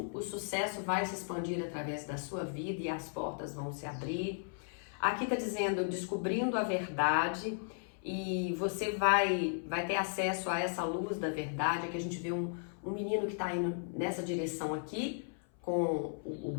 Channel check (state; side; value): silent; right; 54 dB below the other